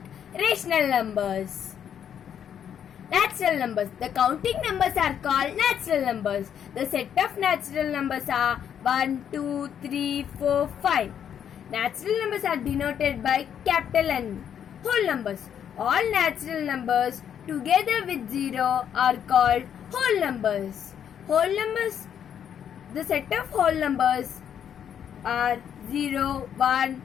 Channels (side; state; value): right; quieter; 8.8 dB